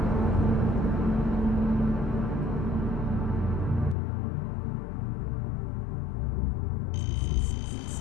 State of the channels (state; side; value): drops out; right; at 4.0 s